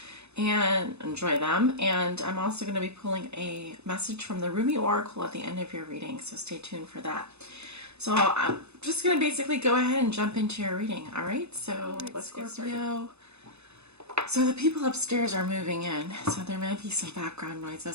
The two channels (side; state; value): left; late; 0.80 ms